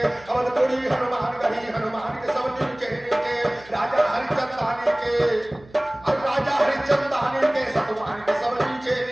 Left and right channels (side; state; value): right; noise; hum, 24 dB below the sound